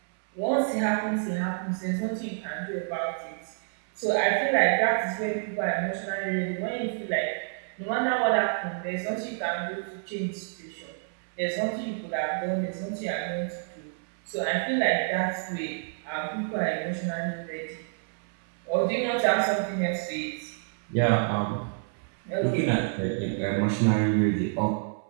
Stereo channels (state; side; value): silent; left; 59 dB below the other